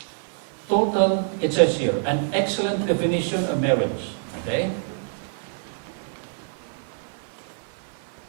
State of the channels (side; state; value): left; silent; digital silence